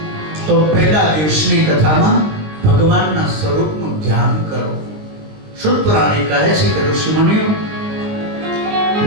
તો પહેલા દિવસની કથામાં ભગવાનના સ્વરૂપનું ધ્યાન કરો. શુદ્ધ પુરાણી કહે છે કે ઋષિમુનિઓ,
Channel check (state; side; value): late; left; 20 ms